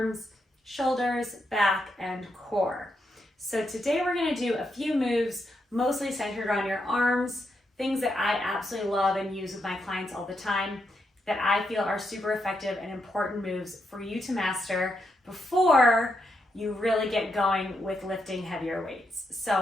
shoulders, back, and core. So today we're going to do a few moves, mostly centered on your arms, things that I absolutely love and use with my clients all the time, that I feel are super effective and important moves for you to master before you really get going with lifting heavier weights.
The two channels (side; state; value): both; normal; correlation 0.82